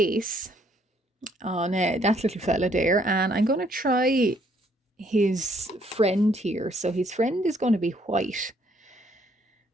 on that little fella there. And I'm going to try his friend here. So his friend is going to be white.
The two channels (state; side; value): normal; both; correlation 0.67